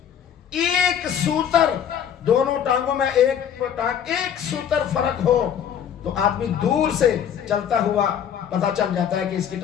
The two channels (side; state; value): right; quieter; 8.8 dB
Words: ایک سوتر، دونوں ٹانگوں میں ایک سوتر فرق ہو تو آدمی دور سے چلتا ہوا پتہ چل جاتا ہے کہ اس کی